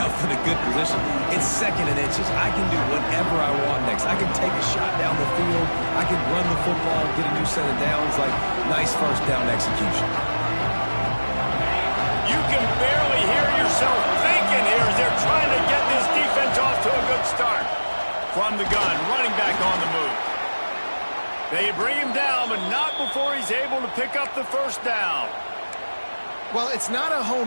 in a good position. It's second and inches. I can do whatever I want next. I can take a shot down the field. I can run the football, get a new set of downs. Like, nice first down execution. You can barely hear yourself thinking here as they're trying to get this defense off to a good start. From the gun, running back on the move. They bring him down, but not before he's able to pick up the first down. Well, it's not a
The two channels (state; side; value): inverted; both; correlation -1.00